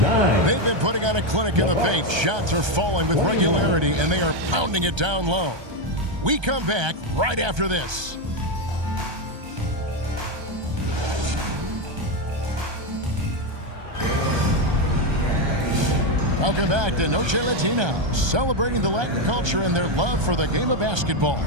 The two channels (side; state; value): left; late; 1.3 ms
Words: They've been putting on a clinic in the paint. Shots are falling with regularity, and they are pounding it down low. We come back right after this. Welcome back to Noche Latina, celebrating the Latin culture and their love for the game of basketball.